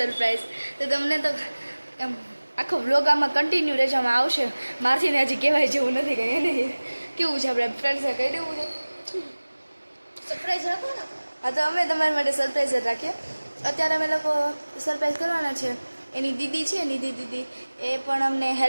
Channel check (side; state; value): both; inverted; correlation -1.00